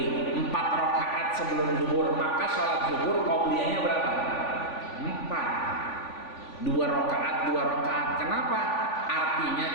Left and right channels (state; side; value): late; right; 3.5 ms